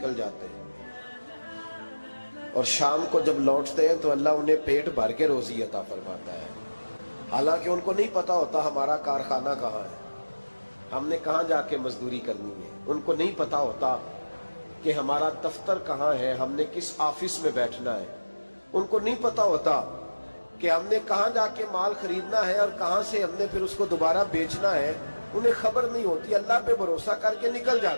جاتے ہیں اور شام کو جب لوٹتے ہیں تو اللہ انہیں پیٹ بھر کے روزی عطا فرماتا ہے، حالانکہ ان کو نہیں پتا ہوتا ہمارا کارخانہ کہاں ہے، ہم نے کہاں جا کے مزدوری کرنی ہے، ان کو نہیں پتا ہوتا کہ ہمارا دفتر کہاں ہے، ہم نے کس آفس میں بیٹھنا ہے، ان کو نہیں پتا ہوتا کہ ہم نے کہاں جا کے مال خریدنا ہے اور کہاں سے ہم نے پھر اس کو دوبارہ بیچنا ہے، انہیں خبر نہیں ہوتی، اللہ پہ بھروسہ کر کے نکل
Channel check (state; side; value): inverted; both; correlation -1.00